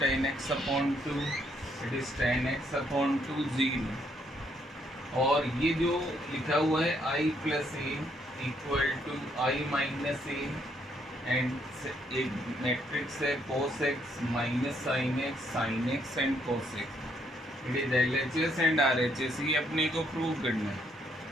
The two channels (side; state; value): both; normal; correlation 0.71